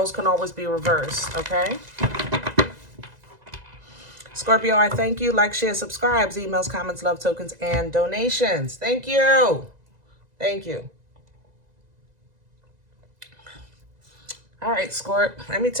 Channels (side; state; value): left; late; 2.0 ms